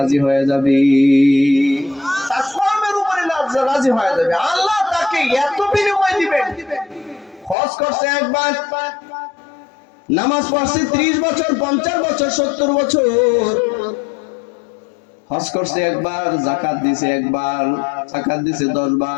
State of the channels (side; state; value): right; drops out; at 7.6 s